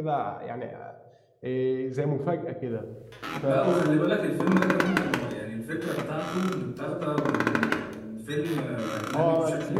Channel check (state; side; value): identical; both; correlation 1.00